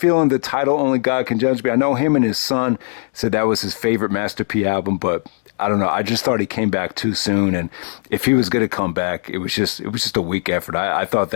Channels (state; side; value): silent; right; 59 dB below the other